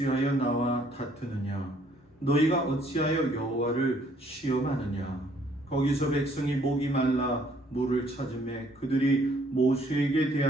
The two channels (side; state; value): both; normal; correlation 0.63